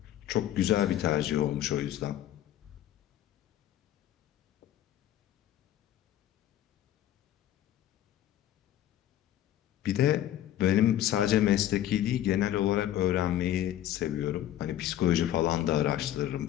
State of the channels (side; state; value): right; quieter; 12.1 dB